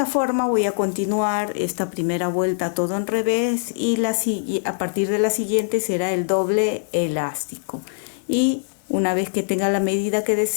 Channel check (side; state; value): right; silent; digital silence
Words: forma voy a continuar esta primera vuelta todo en revés y a partir de la siguiente será el doble elástico. Y una vez que tenga la medida que